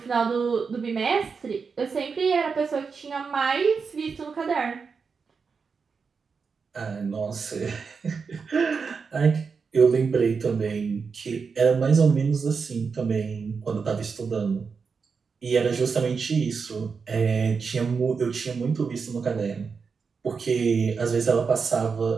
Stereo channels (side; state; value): left; quieter; 5.4 dB